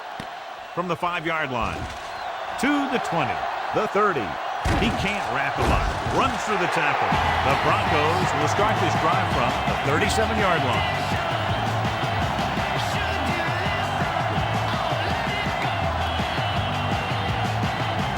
From the 5-yard line. To the 20. The 30. He can't wrap him up. Runs through the tackle. The Broncos will start this drive from the 37-yard line.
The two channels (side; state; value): both; identical; correlation 1.00